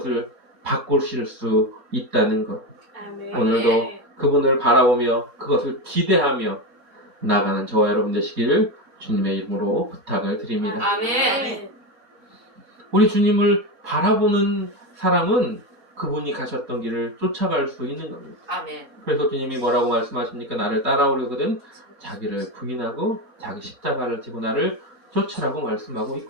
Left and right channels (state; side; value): normal; both; correlation 0.16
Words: 바꾸실 수 있다는 것. 아멘. 오늘도 그분을 바라보며 그것을 기대하며 나가는 저와 여러분 되시기를 주님의 이름으로 부탁을 드립니다. 아멘. 우리 주님을 바라보는 사람은 그분이 가셨던 길을 쫓아갈 수 있는 겁니다. 아멘. 그래서 주님이 뭐라고 말씀하십니까? 나를 따라오려거든 자기를 부인하고 자기 십자가를 지고 나를 쫓으라고 말씀하고